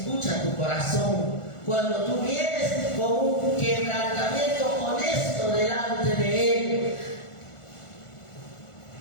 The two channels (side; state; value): right; late; 1.4 ms